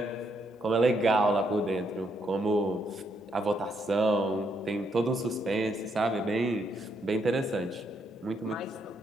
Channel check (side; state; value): both; normal; correlation 0.75